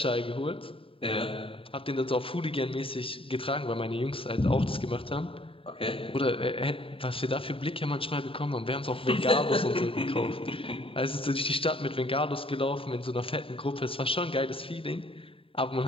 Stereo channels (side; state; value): right; late; 0.27 ms